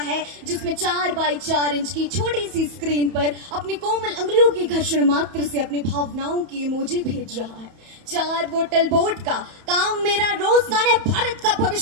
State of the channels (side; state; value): left; late; 31 ms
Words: जिसमें 4 बाई 4 इंच की छोटी सी स्क्रीन पर अपनी कोमल अंगुलियों की घर्षण मात्र से अपनी भावनाओं की इमोजी भेज रहा है। 4 बोतल बोट का काम मेरा रोजगार ने भारत का